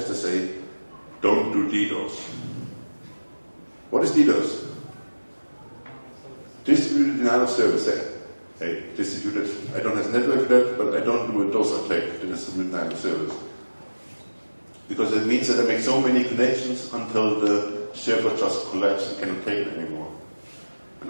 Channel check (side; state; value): both; inverted; correlation -1.00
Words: I say, don't do DDoS. What is DDoS? Distributed denial of service. Hey, distributed, I don't have network for that, but I don't do a DOS attack to distributed denial of service. Because it means that I make so many connections until the server just collapses and cannot take it anymore.